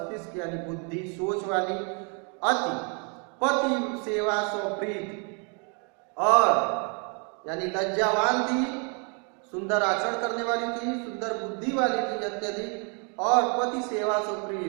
यानी बुद्धि, सोच वाली। अति, पति सेवा स्वप्रीत और यानी लज्जावान थी, सुंदर आचरण करने वाली थी, सुंदर बुद्धि वाली थी अत्यधिक, और पति सेवा से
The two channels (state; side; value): quieter; left; 36.9 dB